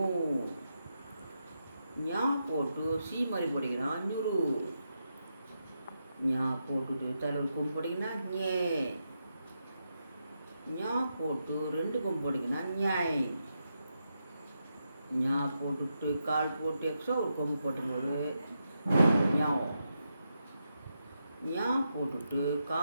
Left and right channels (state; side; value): inverted; both; correlation -0.85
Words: ஞா போட்டு சீ மாதிரி போட்டிங்கன்னா நியூரு. ஞா போட்டுட்டு தலைவர் கொம்பு போட்டிங்கன்னா ஞே. ஞா போட்டு 2 கொம்பு போட்டிங்கன்னா ஞாய். ஞா போட்டுட்டு கால் போட்டு எக்ஸ்ட்ரா ஒரு கொம்பு போட்டும்போது ஞாவ். ஞா போட்டுட்டு